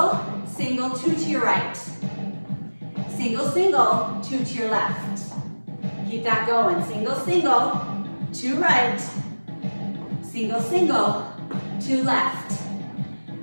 single, 2 to your right. Single, single, 2 to your left. Keep that going. Single, single, 2 right. Single, single, 2 left.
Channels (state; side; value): inverted; both; correlation -1.00